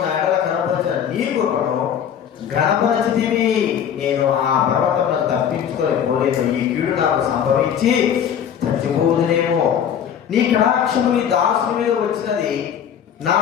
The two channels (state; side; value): quieter; right; 8.7 dB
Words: నా ఎడల కనపరిచిన నీ కృపను ఘనపరచితివి. నేను ఆ పర్వతమును తప్పించుకొని పోలేదు, ఈ కీడు నాకు సంభవించి చచ్చిపోదునేమో. నీ కటాక్షము నీ దాసుని మీద వచ్చినది, నా